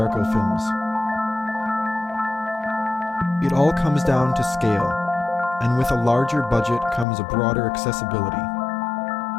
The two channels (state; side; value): drops out; right; at 7.1 s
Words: films. It all comes down to scale, and with a larger budget comes a broader accessibility.